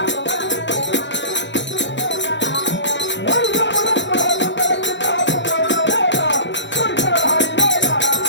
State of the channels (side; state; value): right; late; 0.53 ms